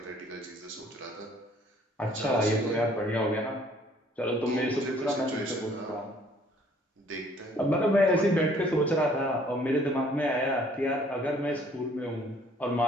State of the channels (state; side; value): normal; both; correlation 0.59